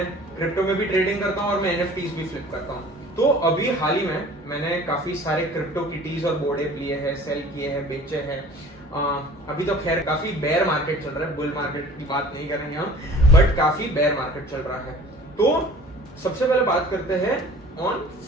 क्रिप्टो में भी ट्रेडिंग करता हूँ और मैं एनएफटीज भी फ्लिप करता हूँ। तो अभी हाल ही में मैंने काफी सारे क्रिप्टो किटीज और बोर्ड ऐप लिए हैं, सेल किए हैं, बेचे हैं। अभी तो खैर काफी बेयर मार्केट चल रहा है, बुल मार्केट की बात नहीं करेंगे हम, बट काफी बेयर मार्केट चल रहा है। तो सबसे पहले बात करते हैं ऑन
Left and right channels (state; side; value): normal; both; correlation 0.46